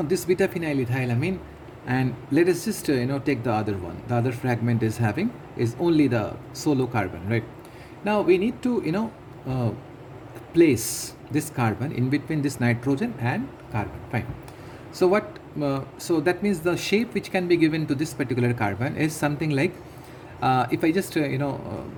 this beta phenylethylamine, and let us just take the other one. The other fragment is only the solo carbon, right? Now we need to place this carbon in between this nitrogen and carbon. Fine. So what? So that means the shape which can be given to this particular carbon is something like, if I just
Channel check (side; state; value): both; identical; correlation 1.00